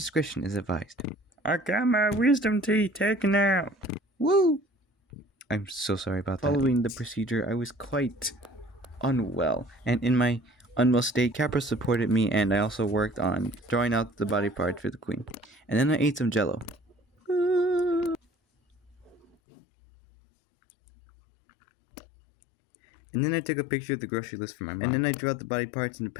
is advised. I got my wisdom teeth taken out. Woo! I'm so sorry about that. Following the procedure, I was quite unwell, and in my unwell state, Capra supported me, and I also worked on drawing out the body parts for the queen. And then I ate some jello. And then I took a picture of the grocery list for my mom. And then I drew out the body parts and the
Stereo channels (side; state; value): right; drops out; at 19.2 s